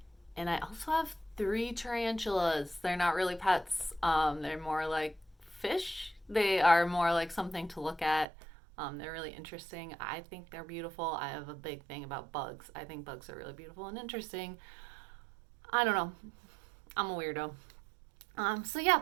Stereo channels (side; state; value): left; drops out; at 8.2 s